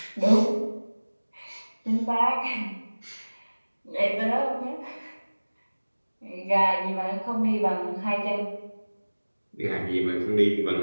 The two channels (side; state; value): both; inverted; correlation -1.00